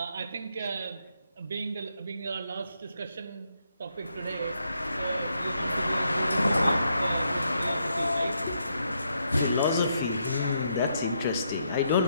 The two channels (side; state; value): both; inverted; correlation -0.78